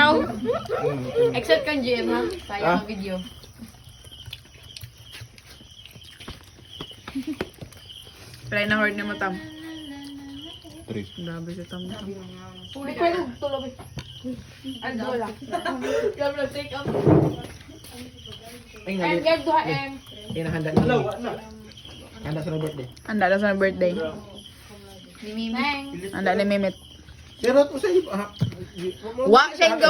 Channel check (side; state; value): both; identical; correlation 1.00